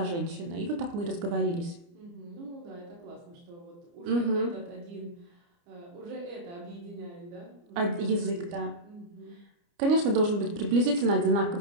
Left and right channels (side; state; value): left; late; 29 ms